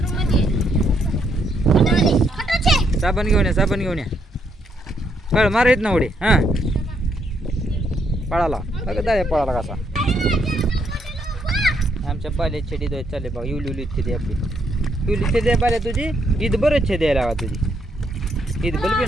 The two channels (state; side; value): normal; both; correlation 0.75